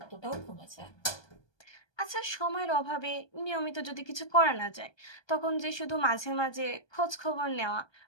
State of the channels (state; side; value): late; right; 1.2 ms